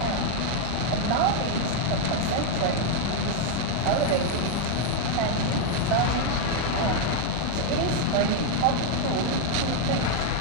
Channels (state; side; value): different; both; correlation 0.01